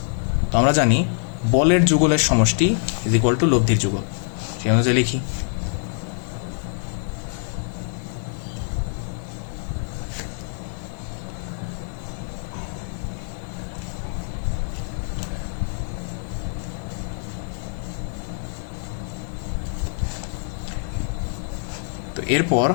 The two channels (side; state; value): right; silent; 58 dB below the other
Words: তো আমরা জানি বলের যুগলের সমষ্টি ইজ ইকুয়াল টু লব্ধির যুগল। সেই অনুযায়ী লিখি তো এরপর